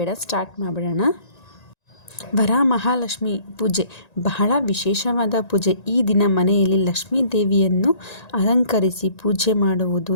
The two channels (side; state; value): right; late; 1.9 ms